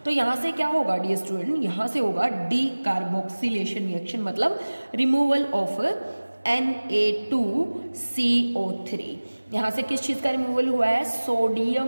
तो यहाँ से क्या होगा डियर स्टूडेंट, यहाँ से होगा डी कार्बोक्सिलेशन रिएक्शन, मतलब रिमूवल ऑफ Na2CO3। यहाँ से किस चीज़ का रिमूवल हुआ है,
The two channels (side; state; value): both; inverted; correlation -1.00